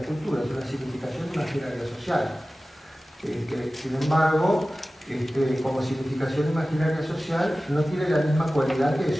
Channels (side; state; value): both; normal; correlation 0.96